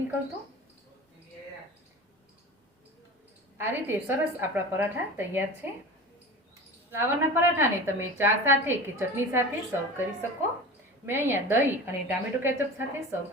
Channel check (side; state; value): both; normal; correlation 0.34